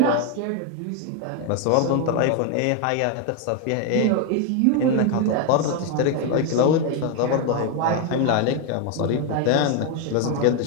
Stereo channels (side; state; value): both; different; correlation 0.01